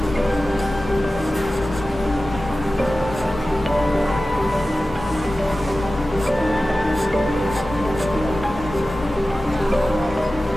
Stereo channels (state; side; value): normal; both; correlation 0.95